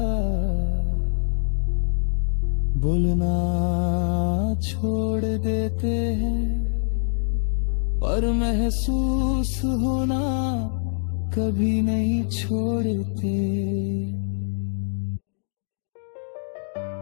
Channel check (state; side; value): silent; right; digital silence